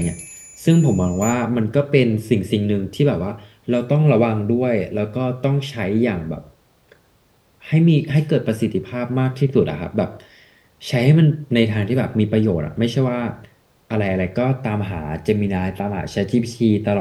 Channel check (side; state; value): both; identical; correlation 1.00